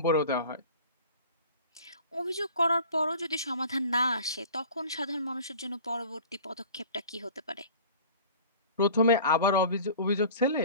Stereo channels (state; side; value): inverted; both; correlation -0.43